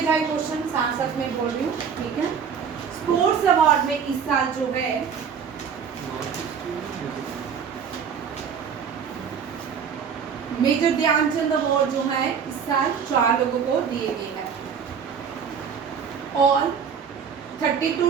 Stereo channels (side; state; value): left; quieter; 6.9 dB